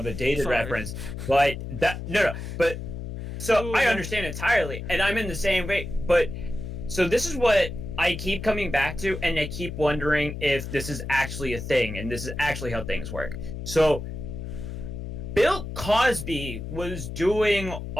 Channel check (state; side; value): noise; left; hum, 7 dB below the sound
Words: a dated sorry. reference, but but so Ooh, I yeah. understand entirely, and I'm in the same way. But so this is what I keep coming back to, and I keep wondering if this is actually a thing, and this is actually how things work. So Bill Cosby was doing